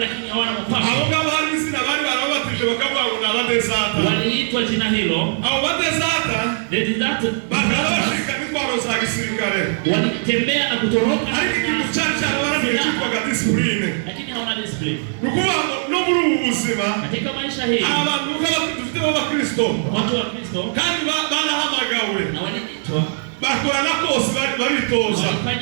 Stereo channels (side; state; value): left; silent; 66 dB below the other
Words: lakini hawana Abo mpango, ngabo hari izina bari barabatije bakavuga ngo ni abadezata. waliitwa jina hilo. Abo badezata bakaba bashika n'intwaro za gisirikare, walitembea na kutoroka, ariko ikintu cyari cyarabananiye cyitwaga disipurine. lakini hawana discipline Ni ukuvuga ngo no muri ubu buzima katika maisha hii. hari abantu dufite b'abakristo Watu wa Kristo kandi barahamagawe na waliitwa, bakora na kose baritoza,